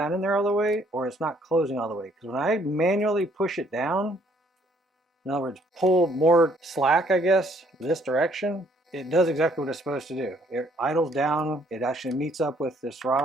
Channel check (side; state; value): both; normal; correlation 0.65